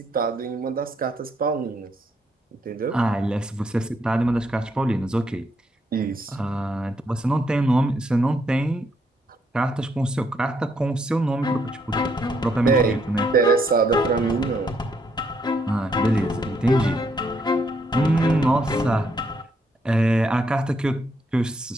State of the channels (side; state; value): both; normal; correlation 0.74